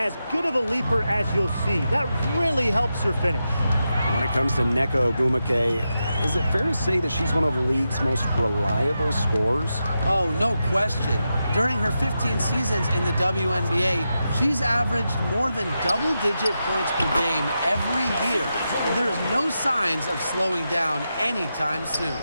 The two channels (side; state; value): both; inverted; correlation -0.88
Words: good of a leaper as you'll see. That really helps her finish. When it comes to Nneka Ogumake, is it fair to say that she's one of the league's most reliable scorers? Oh, no question. During her 15 seasons in the WNBA, she's averaged more than double-digit points per game every year, and there is no signs of slowing down anytime soon.